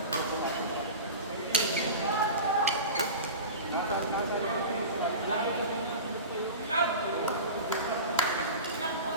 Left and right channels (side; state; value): both; inverted; correlation -0.31